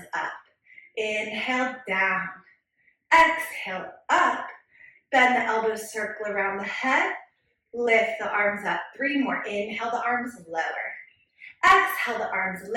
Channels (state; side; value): identical; both; correlation 1.00